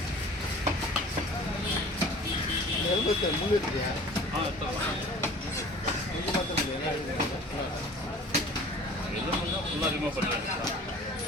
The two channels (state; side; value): normal; both; correlation 0.45